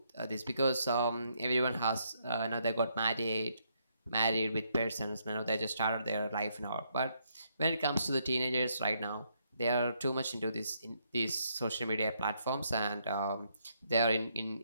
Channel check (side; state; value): both; inverted; correlation -0.74